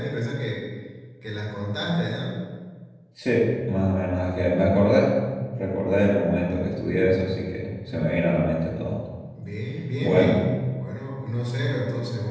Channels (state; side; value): identical; both; correlation 1.00